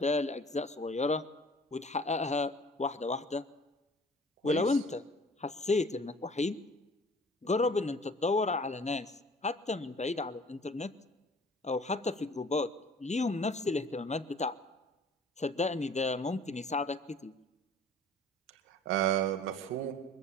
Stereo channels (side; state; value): both; normal; correlation 0.50